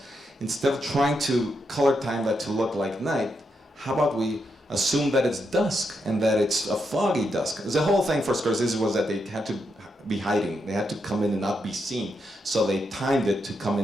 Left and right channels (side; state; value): both; normal; correlation 0.82